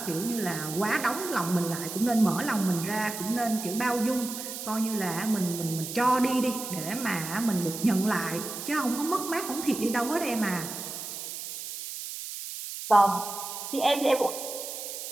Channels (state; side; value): noise; right; hiss, 8 dB below the sound